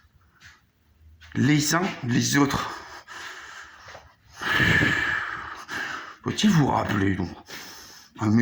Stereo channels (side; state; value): both; identical; correlation 1.00